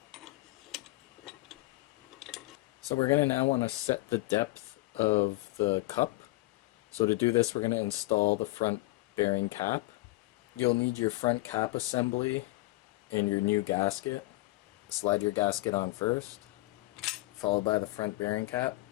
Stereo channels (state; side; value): quieter; right; 20.4 dB